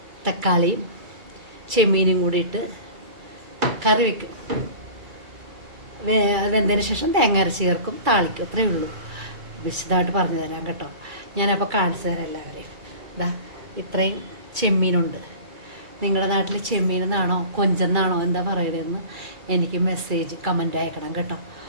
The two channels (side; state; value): left; late; 2.3 ms